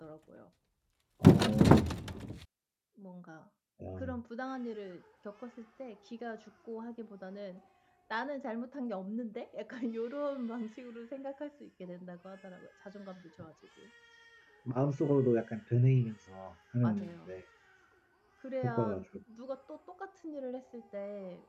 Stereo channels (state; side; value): identical; both; correlation 1.00